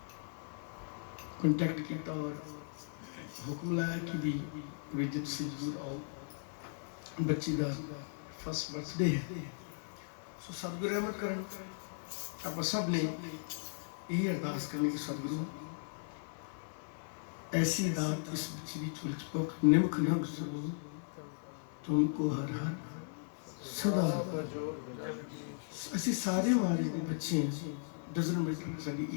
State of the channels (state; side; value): silent; right; 53 dB below the other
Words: ਕੰਟੈਕਟ ਕੀਤਾ ਔਰ ਹੁਕਮ ਲਾਇਆ ਕਿ ਵੀ ਵਿਜਿਤ ਸਿੰਘ ਜੀ ਆਓ, ਬੱਚੀ ਦਾ ਫਸਟ ਬਰਥਡੇ ਹੈ। ਸੋ ਸਤਿਗੁਰੂ ਰਹਿਮਤ ਕਰਨ। ਆਪਾਂ ਸਭ ਨੇ ਇਹ ਅਰਦਾਸ ਕਰਨੀ ਕਿ ਸਤਿਗੁਰੂ ऐसी दात इस बच्ची की चुलचपोक निमक न गुजरो, तुमको हर हर सदा। ਅਸੀਂ ਸਾਰੇ ਮਾਰੇ ਦੇ ਬੱਚੇ ਹਾਂ। ਡਜ਼ਨ ਮੀਟਰ ਸਾਡੀ